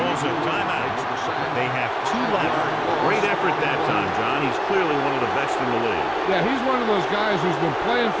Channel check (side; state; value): both; identical; correlation 1.00